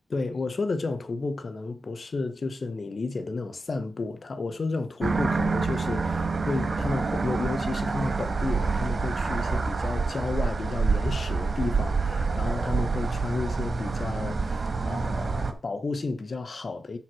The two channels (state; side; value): normal; both; correlation 0.89